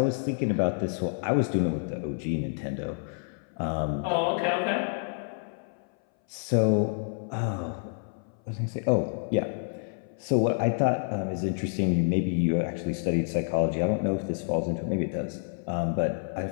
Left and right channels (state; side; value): silent; right; 59 dB below the other